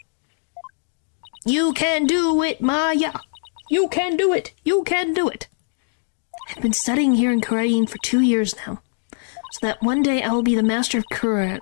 You can do it, Maya. You can do it. You can do it. I've been studying here in Korean for 2 years now, so that one day I will be the master of Korean,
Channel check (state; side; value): silent; right; digital silence